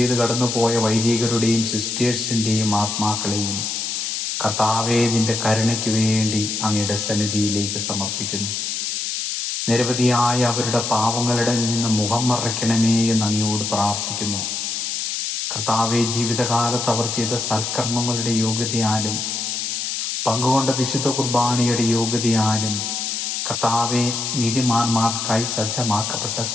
കടന്നുപോയ വൈദികരുടെയും സിസ്റ്റേഴ്സിൻ്റെയും ആത്മാക്കളെയും കർത്താവേ, നിന്റെ കരുണയ്ക്ക് വേണ്ടി അങ്ങയുടെ സന്നിധിയിലേക്ക് സമർപ്പിക്കുന്നു. നിരവധിയായ അവരുടെ പാവങ്ങളുടെ നിന്ന് മുഖം മറയ്ക്കണമേ എന്ന് അങ്ങയോട് പ്രാർത്ഥിക്കുന്നു. കർത്താവെ, ജീവിതകാലത്ത് അവർ ചെയ്ത സൽക്കർമ്മങ്ങളുടെ യോഗ്യതയാലും പങ്കുകൊണ്ട വിശുദ്ധ കുർബാനയുടെ യോഗ്യതയാലും കർത്താവെ, നീതിമാന്മാർക്കായി സജ്ജമാക്കപ്പെട്ട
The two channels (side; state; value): left; noise; hiss, 2 dB below the sound